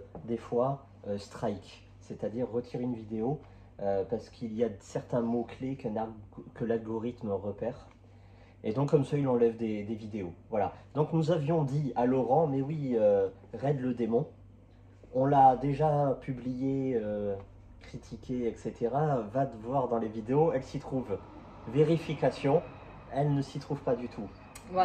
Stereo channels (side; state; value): both; identical; correlation 1.00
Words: des fois, strike, c'est-à-dire retire une vidéo parce qu'il y a certains mots-clés que l'algorithme repère. Et donc comme ça, il enlève des vidéos. Voilà. Donc nous avions dit à Laurent, mais oui, Raid le démon, on l'a déjà publié, critiqué, etc. Va te voir dans les vidéos, elle s'y trouve. Vérification, elle ne s'y trouve pas du tout.